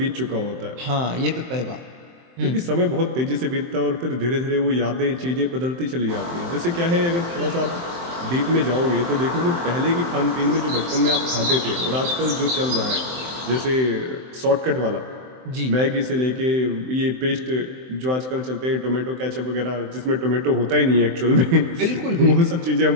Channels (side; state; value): left; late; 23 ms